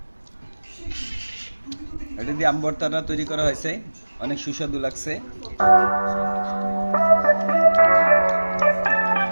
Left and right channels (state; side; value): inverted; both; correlation -1.00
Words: এটা দিয়ে আম ভর্তাটা তৈরি করা হয়েছে। অনেক সুস্বাদু লাগছে।